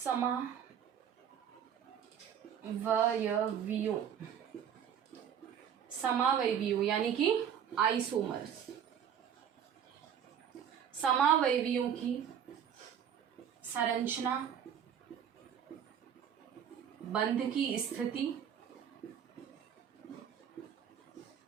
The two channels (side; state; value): left; quieter; 8.7 dB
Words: समावयवियों यानी कि आइसोमर्स, समावयवियों की संरचना, बंध की स्थिति,